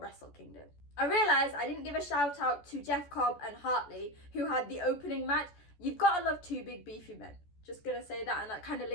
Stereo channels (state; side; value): late; right; 14 ms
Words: Kingdom. I realised I didn't give a shout out to Jeff Cobb and Hartley, who had the opening match. You've got to love two big beefy men. Just gonna say that, and that kind of